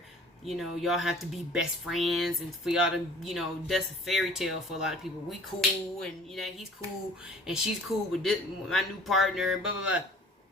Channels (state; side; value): normal; both; correlation 0.50